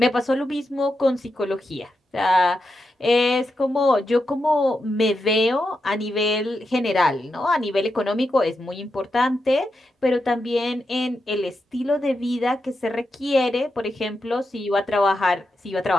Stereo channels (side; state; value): both; normal; correlation 0.87